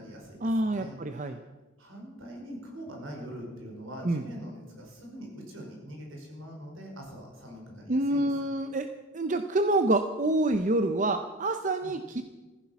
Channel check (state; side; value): normal; both; correlation 0.38